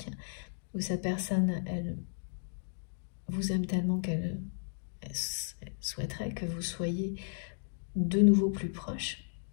où cette personne, elle vous aime tellement qu'elle souhaiterait que vous soyez de nouveau plus proches,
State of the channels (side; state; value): right; silent; digital silence